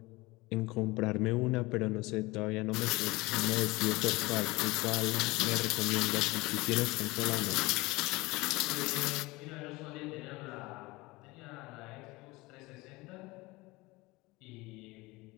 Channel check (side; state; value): right; quieter; 22.2 dB